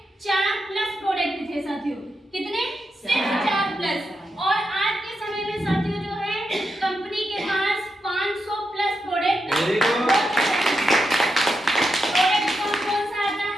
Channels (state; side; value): normal; both; correlation 0.86